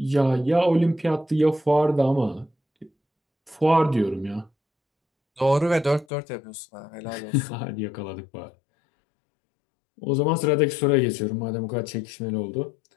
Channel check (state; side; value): drops out; right; at 6.1 s